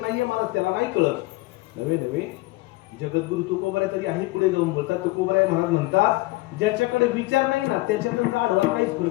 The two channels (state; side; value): quieter; right; 20.7 dB